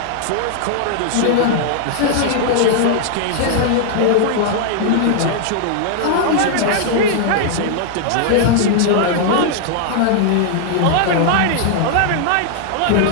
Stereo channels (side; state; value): both; different; correlation -0.01